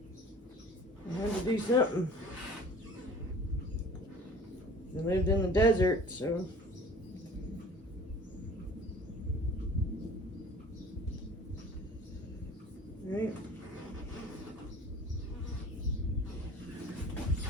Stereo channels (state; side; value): normal; both; correlation 0.45